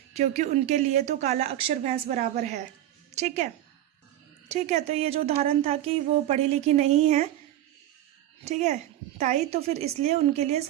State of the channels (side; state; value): left; quieter; 13.0 dB